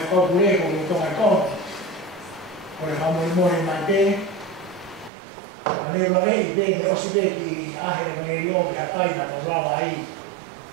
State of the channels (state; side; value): drops out; left; at 5.1 s